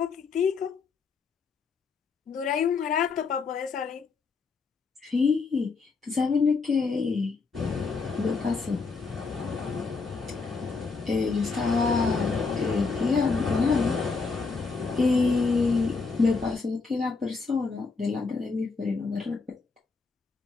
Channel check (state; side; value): quieter; right; 4.5 dB